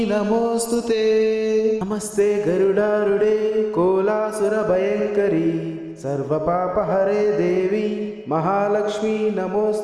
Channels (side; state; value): both; identical; correlation 1.00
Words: నమోస్తుతే నమస్తే గరుడారుడే కోలాసుర భయంకరి सर्वपापहरे देवी महालक्ष्मी